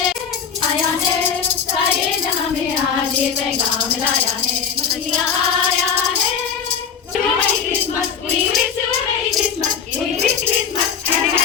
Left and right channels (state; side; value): quieter; right; 7.0 dB